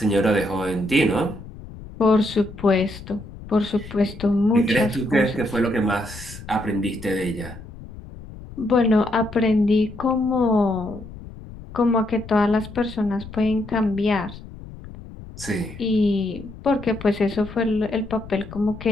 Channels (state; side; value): noise; left; rumble, 15 dB below the sound